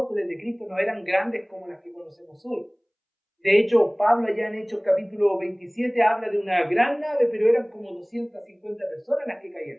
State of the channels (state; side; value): identical; both; correlation 1.00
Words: de Cristo, no eran grandes como las que conocemos hoy. De hecho, Pablo allá en Hechos capítulo 27 habla de una gran nave, pero eran como 250 personas las que